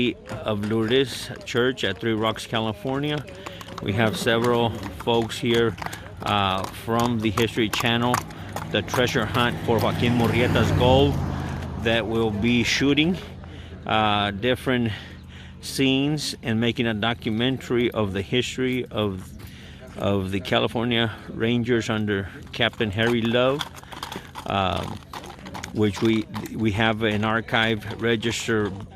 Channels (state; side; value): identical; both; correlation 1.00